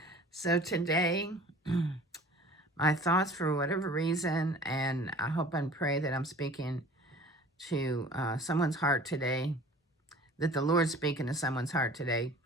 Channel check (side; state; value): both; normal; correlation 0.46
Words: So today, my thoughts for whatever reason, and I hope and pray that I'm speaking to someone's heart today, that the Lord's speaking to someone's heart today,